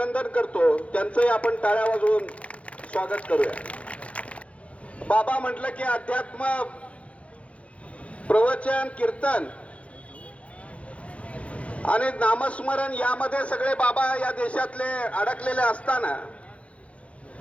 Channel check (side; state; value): right; late; 0.063 ms